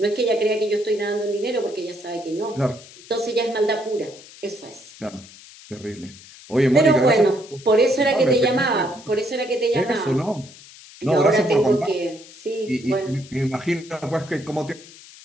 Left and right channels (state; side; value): noise; left; hiss, 20 dB below the sound